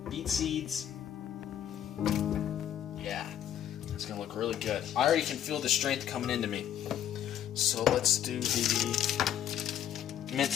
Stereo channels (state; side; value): quieter; right; 10.4 dB